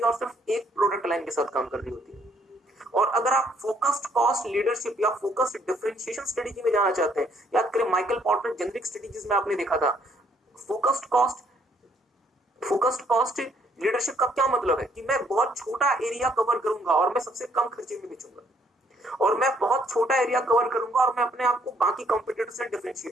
और सिर्फ एक प्रोडक्ट लाइन के साथ काम कर रही होती है। और अगर आप फोकस्ड कॉस्ट लीडरशिप या फोकस्ड डिफरेंशिएशन स्ट्रेटेजी में जाना चाहते हैं, याद करें माइकल पोर्टर जेनरिक स्ट्रेटेजीज में आपने देखा था, फोकस्ड कॉस्ट लीडरशिप का क्या मतलब है कि मैं बहुत छोटा एरिया कवर करूंगा और मैं सबसे कम खर्चे में बेचूंगा, और मैं बहुत छोटा एरिया कवर करूंगा और मैं अपने आप को बाकी कंपटीटर से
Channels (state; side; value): normal; both; correlation 0.67